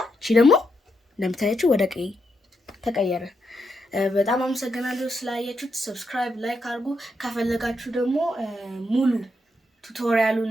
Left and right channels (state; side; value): normal; both; correlation 0.81